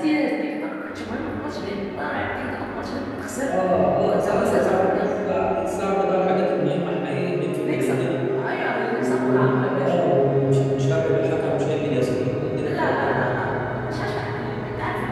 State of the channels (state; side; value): identical; both; correlation 1.00